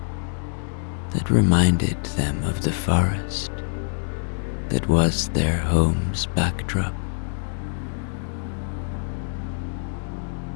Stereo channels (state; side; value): silent; right; digital silence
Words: that reminded them of the forest that was their home's backdrop.